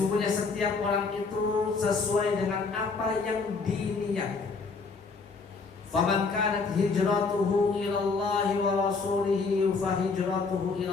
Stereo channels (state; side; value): quieter; right; 4.5 dB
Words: setiap orang itu sesuai dengan apa yang diniat. Faman kanat hijratuhu ila Allah wa rasulihi fa hijratuhu ila